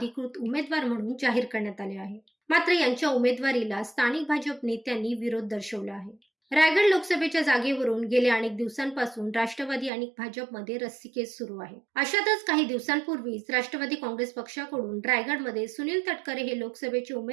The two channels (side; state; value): left; drops out; at 9.9 s